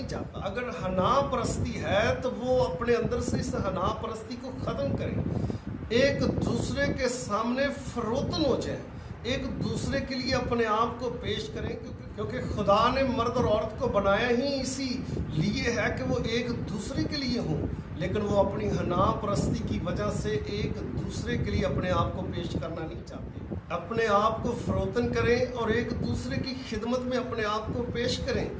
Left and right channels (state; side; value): identical; both; correlation 1.00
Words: چاہتا۔ اگر حنا پرستی ہے تو وہ اپنے اندر سے اس حنا پرستی کو ختم کریں، ایک دوسرے کے سامنے فروتن ہو جائیں، ایک دوسرے کے لیے اپنے آپ کو پیش کریں، کیونکہ خدا نے مرد اور عورت کو بنایا ہی اسی لیے ہے کہ وہ ایک دوسرے کے لیے ہوں، لیکن وہ اپنی حنا پرستی کی وجہ سے ایک دوسرے کے لیے اپنے آپ کو پیش کرنا نہیں چاہتے۔ اپنے آپ کو فروتن کریں اور ایک دوسرے کی خدمت میں اپنے آپ کو پیش کریں۔